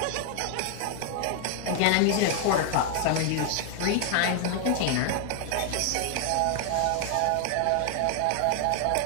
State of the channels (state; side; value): different; both; correlation 0.00